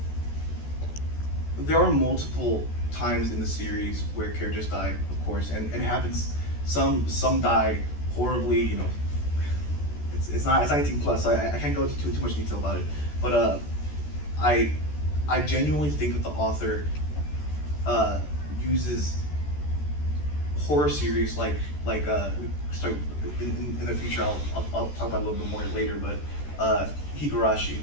there are multiple times in the series where characters die, of course, and it happens. Some die horribly. You know, it's not 18 plus. So I can't go into too much detail about it. But I genuinely think that the author uses horror series like sorry, in the future I'll talk about it a little bit more later, but Higurashi,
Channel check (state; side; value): late; right; 14 ms